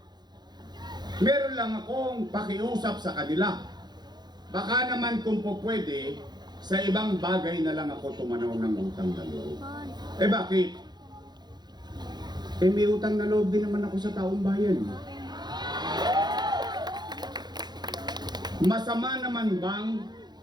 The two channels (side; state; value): left; late; 0.21 ms